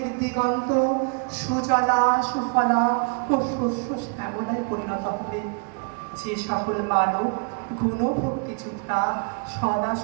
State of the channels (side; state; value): left; quieter; 38.9 dB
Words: দিগন্ত সুজলা, সুফলা ও শস্য শ্যামলায় পরিণত হবে। যে সকল মানব গুণভক্তিযুক্তা, সদা